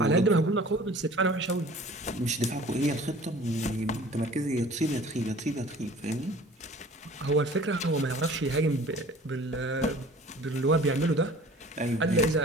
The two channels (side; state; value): both; normal; correlation 0.47